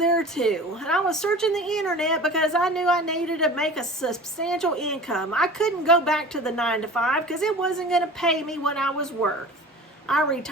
too. And I was searching the internet because I knew I needed to make a substantial income. I couldn't go back to the 9 to 5 because it wasn't going to pay me what I was worth. I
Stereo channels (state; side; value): normal; both; correlation 0.39